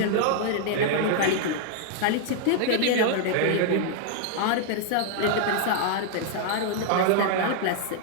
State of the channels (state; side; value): different; both; correlation -0.01